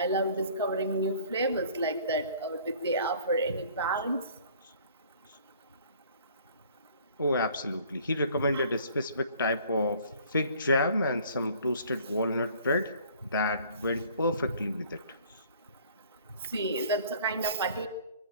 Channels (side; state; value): both; inverted; correlation -0.54